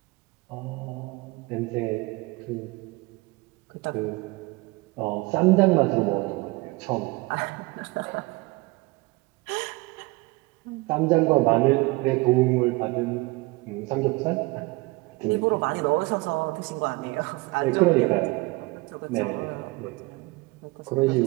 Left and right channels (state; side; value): quieter; left; 23.7 dB